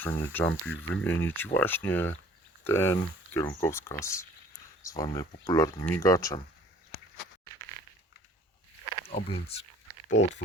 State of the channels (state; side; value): normal; both; correlation 0.52